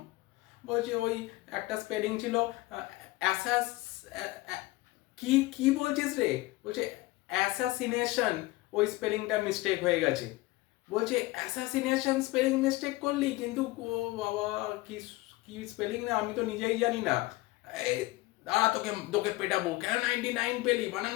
বলছে ওই একটা স্পেলিং ছিল অ্যাসাস, কি কি বলছিস রে? বলছে অ্যাসাসিনেশন, ওই স্পেলিংটা মিস্টেক হয়ে গেছে। বলছে অ্যাসাসিনেশন স্পেলিং মিস্টেক করলি, কিন্তু ও বাবা কি কি স্পেলিং না আমি তো নিজেই জানি না। এই দাঁড়া, তোকে তোকে পেটাবো, কেন 99 পেলি, বানান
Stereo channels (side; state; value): right; quieter; 19.9 dB